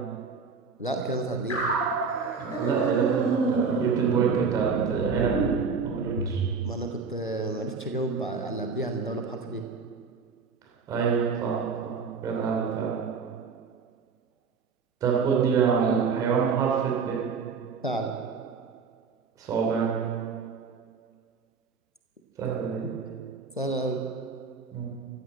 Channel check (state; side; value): quieter; left; 5.3 dB